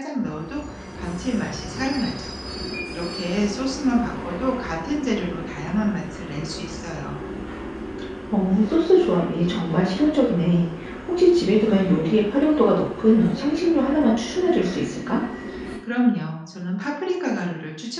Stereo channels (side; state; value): both; identical; correlation 1.00